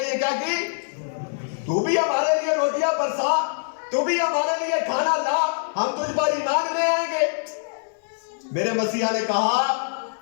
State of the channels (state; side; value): silent; right; digital silence